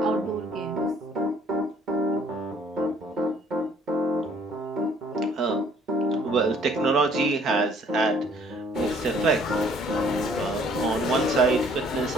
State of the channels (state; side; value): normal; both; correlation 0.60